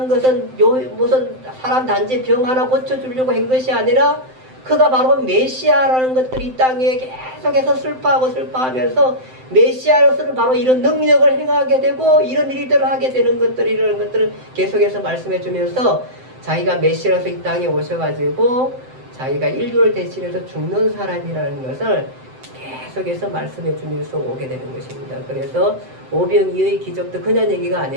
것은 무슨 사람 단지 병 하나 고쳐주려고 한 것이 아니라 그가 바로 메시아라는 것들이 이 땅에 계속해서 슬퍼하면서 메시아로서는 바로 이런 능력을 행하게 되고 이런 일들을 하게 되는 이런 것들을 계속해서 말씀해 주면서 자기가 메시아로서 이 땅에 오셔가지고 자기가 인류를 대신해서 죽는 사람이라는 것을 계속해서 말씀해 주면서 오게 되는 것입니다. 그래서 오병이어의 기적도 그냥 얘기가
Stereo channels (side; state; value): left; late; 7.8 ms